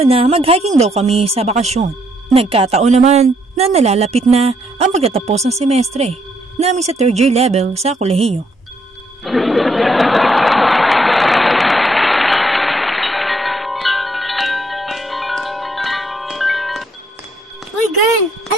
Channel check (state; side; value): normal; both; correlation 0.71